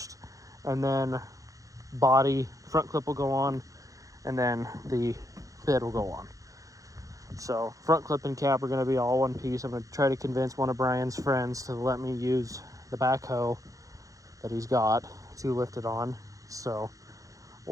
and then body, front clip will go on, and then the bed will go on. So front clip and cab are gonna be all one piece. I'm gonna try to convince one of Brian's friends to let me use the backhoe that he's got to lift it on. So,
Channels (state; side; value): late; left; 0.16 ms